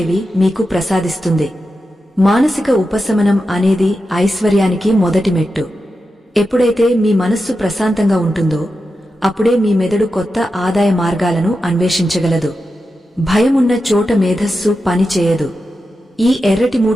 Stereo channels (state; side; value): normal; both; correlation 0.90